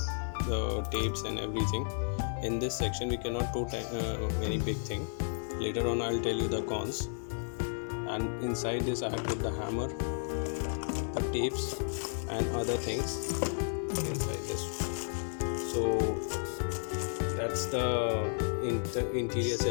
the tapes and everything. In this section we cannot put any big thing. Later on I'll tell you the cons. And inside this I have put the hammer, the tapes and other things inside this. So that's the interior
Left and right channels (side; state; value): right; silent; digital silence